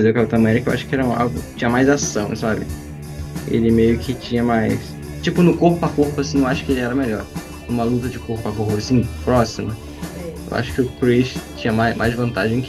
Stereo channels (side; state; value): both; identical; correlation 1.00